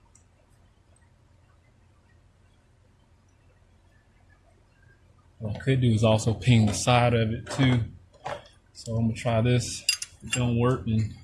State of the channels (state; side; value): identical; both; correlation 1.00